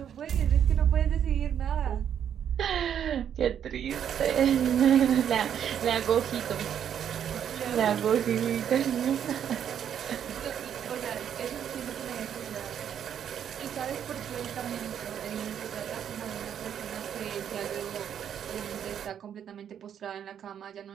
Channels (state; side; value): quieter; left; 9.0 dB